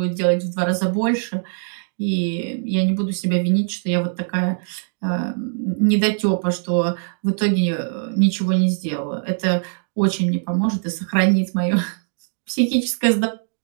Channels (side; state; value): left; silent; 65 dB below the other